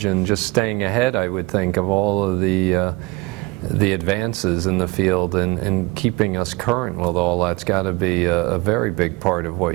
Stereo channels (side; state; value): left; quieter; 23.9 dB